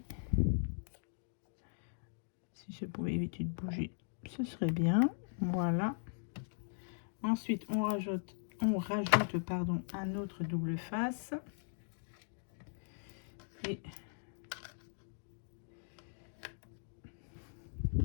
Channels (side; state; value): right; silent; digital silence